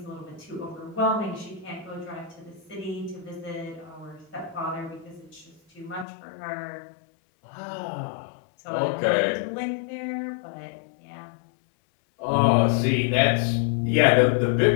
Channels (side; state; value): right; drops out; at 6.1 s